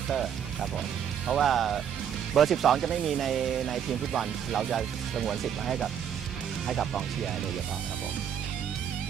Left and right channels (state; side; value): quieter; left; 8.7 dB